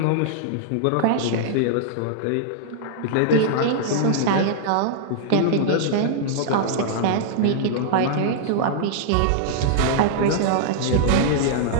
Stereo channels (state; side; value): different; both; correlation -0.01